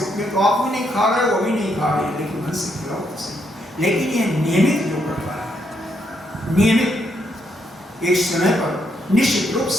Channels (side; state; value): both; normal; correlation 0.76